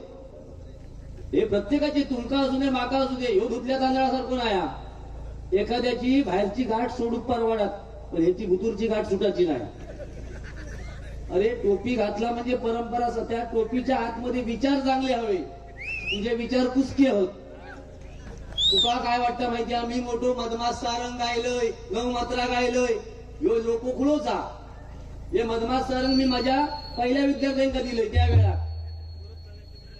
हे प्रत्येकाचे, तुमका असू दे माका असू दे, ह्यो धुतल्या तांदळासारखं नाही. एखाद्याची बाहेरची गाठ सोडून परवाडात, पण ह्याची भुतूरची गाठ सुटायची नाही. अरे टोपी घातला म्हणजे परंपरा, त्या टोपीच्या आतमध्ये विचार चांगले हवे, तुझे विचार कुसके होत. तुका काय वाटतं माहितीये, मी मोठो मधमास सारंग गायलोय, 9 मात्रा गायलोय, ह्यो लोकोखुळोचा. हे मधमास सारंग मी माझ्या पहिल्या विद्यार्थ्यांका दिलंय त्यावेळा.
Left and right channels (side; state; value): both; identical; correlation 1.00